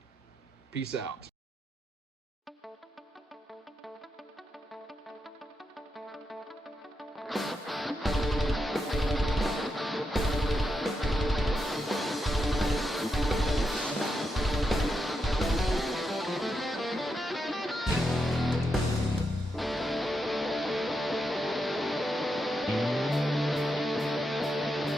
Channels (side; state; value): both; normal; correlation 0.84